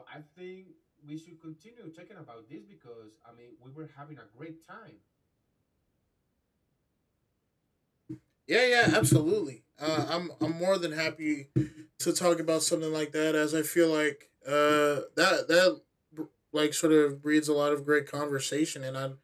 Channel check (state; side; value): identical; both; correlation 1.00